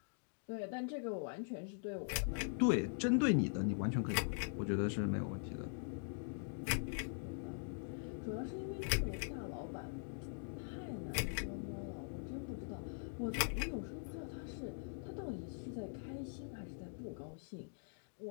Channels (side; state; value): right; silent; digital silence